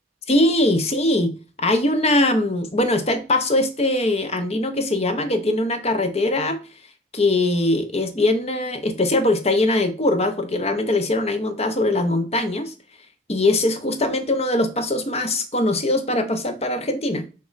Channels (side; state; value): both; normal; correlation 0.42